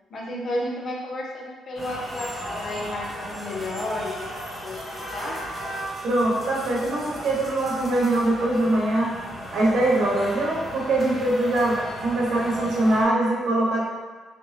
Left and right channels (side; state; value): both; normal; correlation 0.80